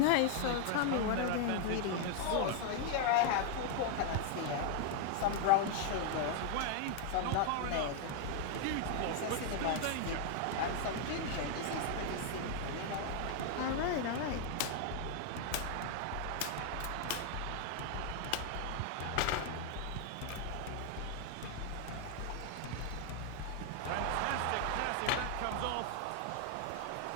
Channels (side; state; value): both; different; correlation 0.00